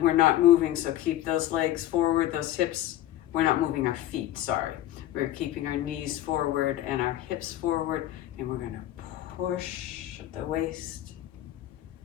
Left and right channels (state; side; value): quieter; right; 13.7 dB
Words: we're not moving, so keep those legs forward, those hips. We're not moving our feet, sorry. We're keeping our knees forward and our hips forward, and we're going to push at the waist.